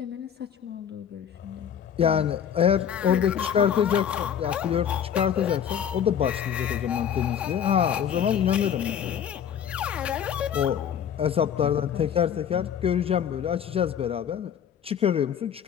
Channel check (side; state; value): right; quieter; 8.7 dB